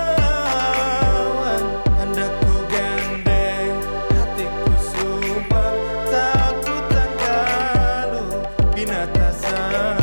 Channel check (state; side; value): inverted; both; correlation -1.00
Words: hendak ku gandeng hatiku sumpah, takutan kalau binata